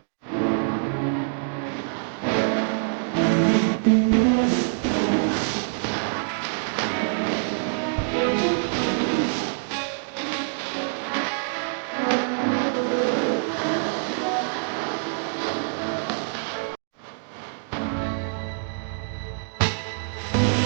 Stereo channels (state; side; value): silent; left; digital silence